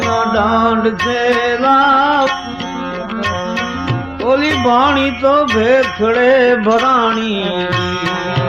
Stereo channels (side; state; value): right; noise; hum, 25 dB below the sound